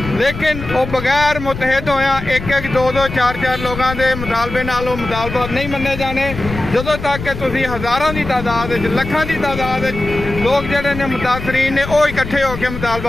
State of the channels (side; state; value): left; noise; rumble, 9 dB below the sound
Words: लेकिन वो बगैर मुतहद होया एक 2 4 लोगों के मुतालबे नाल वो मुतालबात नहीं मन्ने जाने। ਜਦੋਂ तक कि तुसी हज़ारों की तादाद लखों की तादाद लोग जोड़े ने मुतासरीन ने वो इकट्ठे होकर